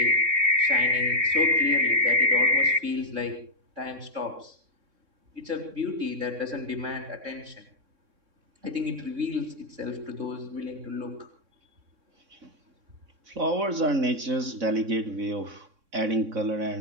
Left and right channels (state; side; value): late; left; 3.6 ms